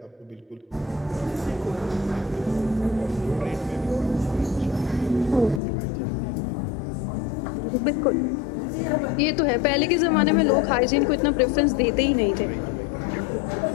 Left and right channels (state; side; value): drops out; right; at 5.6 s